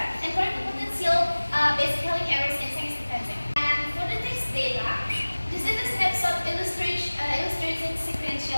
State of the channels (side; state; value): both; inverted; correlation -1.00